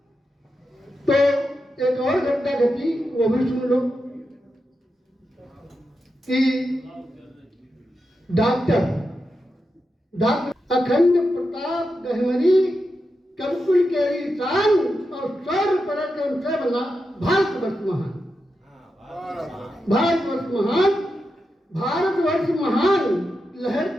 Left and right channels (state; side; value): normal; both; correlation 0.88